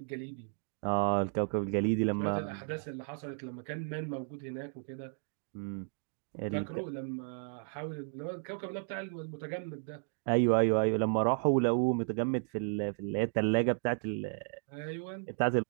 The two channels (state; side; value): silent; left; 55 dB below the other